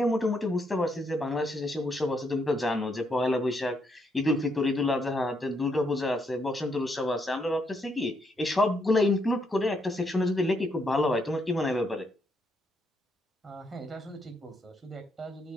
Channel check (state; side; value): normal; both; correlation 0.76